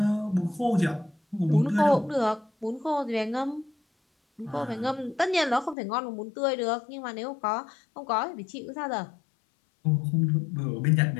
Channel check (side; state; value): right; drops out; at 5.8 s